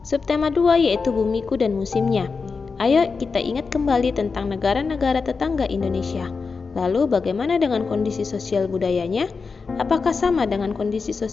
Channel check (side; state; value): right; quieter; 4.8 dB